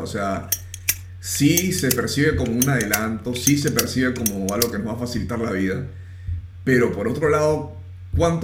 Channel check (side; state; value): both; identical; correlation 1.00